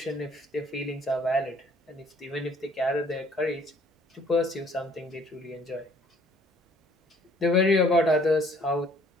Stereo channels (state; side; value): normal; both; correlation 0.59